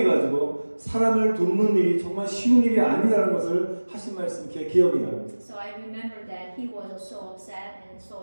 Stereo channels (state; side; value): inverted; both; correlation -1.00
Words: 사람을 돕는 일이 정말 쉬운 일이 아니라는 것을 하신 말씀 제 기억이 납니다. So I remember that he was so upset and so